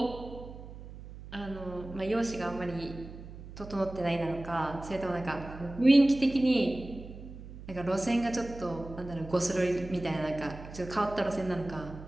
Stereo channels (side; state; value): right; noise; hum, 14 dB below the sound